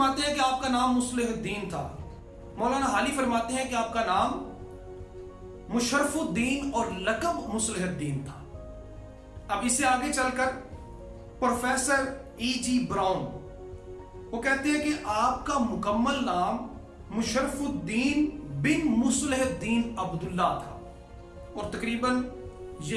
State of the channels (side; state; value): both; identical; correlation 1.00